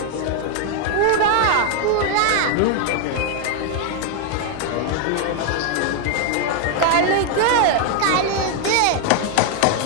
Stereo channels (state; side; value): different; both; correlation 0.00